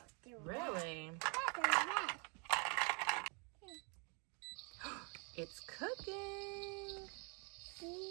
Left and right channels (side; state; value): left; quieter; 34.8 dB